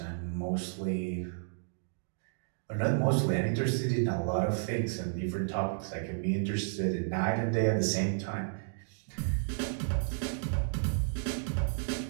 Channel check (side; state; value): left; silent; digital silence